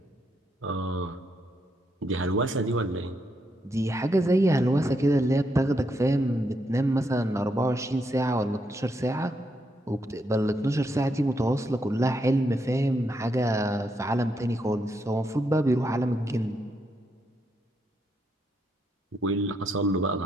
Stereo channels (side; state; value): both; normal; correlation 0.79